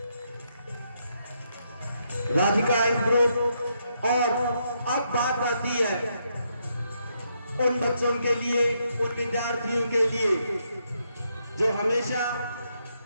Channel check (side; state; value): both; inverted; correlation -0.78